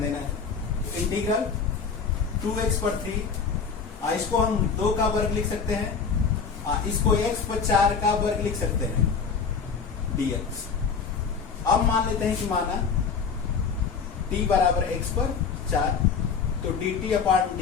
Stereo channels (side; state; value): right; quieter; 5.7 dB